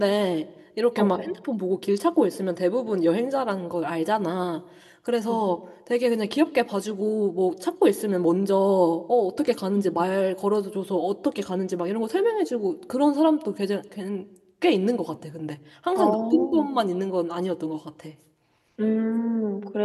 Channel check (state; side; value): identical; both; correlation 1.00